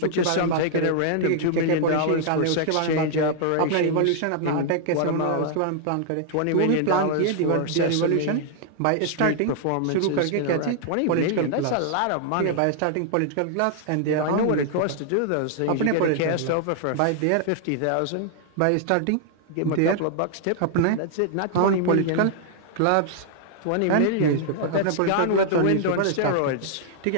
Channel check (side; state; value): both; different; correlation -0.01